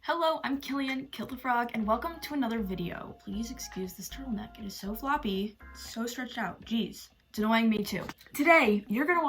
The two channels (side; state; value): both; identical; correlation 1.00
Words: Hello, I'm Killian, Kill the Frog, and welcome to another video. Please excuse this turtleneck. It is so floppy, so stretched out. Jeez, it's annoying me too. Today, you're gonna